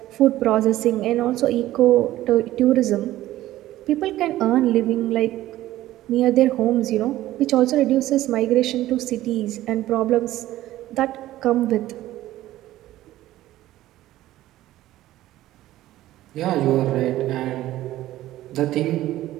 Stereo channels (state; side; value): quieter; left; 14.9 dB